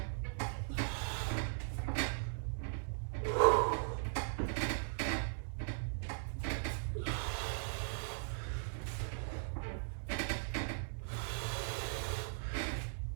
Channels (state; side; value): silent; left; digital silence